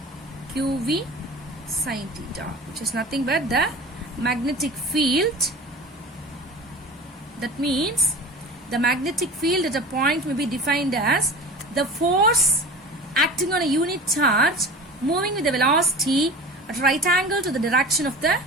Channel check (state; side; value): normal; both; correlation 0.37